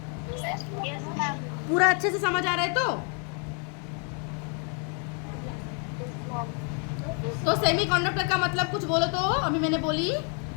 पूरा अच्छे से समझ आ रहा है? तो सेमीकंडक्टर का मतलब कुछ बोलो तो। अभी मैंने बोली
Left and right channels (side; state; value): right; quieter; 39.0 dB